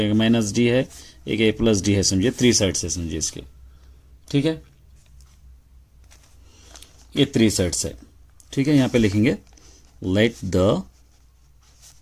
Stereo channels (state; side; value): identical; both; correlation 1.00